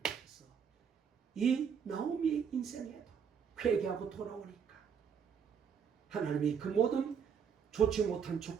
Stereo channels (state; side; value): quieter; left; 7.2 dB